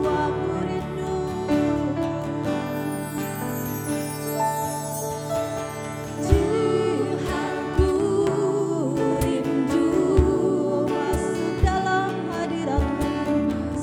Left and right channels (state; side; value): identical; both; correlation 1.00